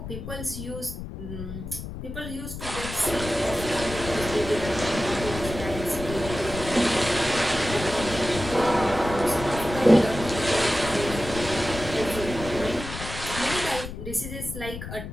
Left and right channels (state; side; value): noise; left; rumble, 9 dB below the sound